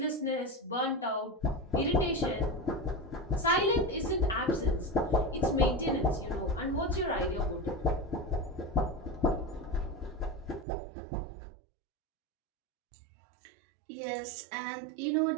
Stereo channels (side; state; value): left; drops out; at 10.7 s